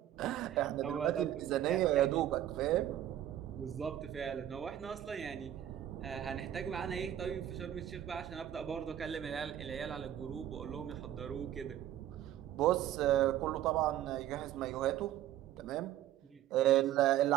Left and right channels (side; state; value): left; quieter; 12.0 dB